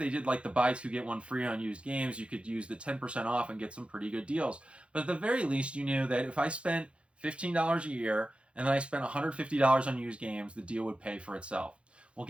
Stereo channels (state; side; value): late; left; 0.059 ms